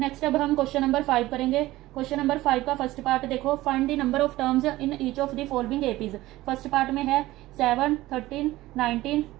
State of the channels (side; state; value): left; quieter; 17.3 dB